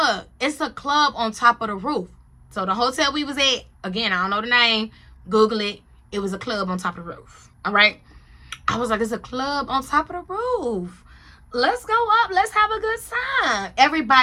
it's a club on top of the roof. So the hotel we was at, again, I don't know the name. Google it. It was a club on top of the roof. All right. I was like, it's a club on top of the roof. Let's go up. Let's have a good time.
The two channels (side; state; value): both; identical; correlation 1.00